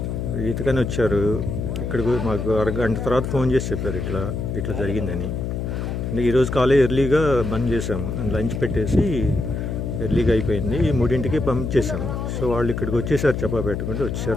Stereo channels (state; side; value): noise; left; hum, 3 dB below the sound